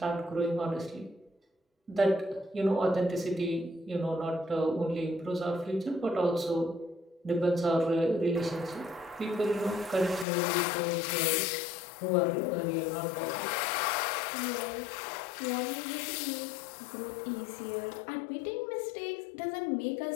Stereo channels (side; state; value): right; drops out; at 10.2 s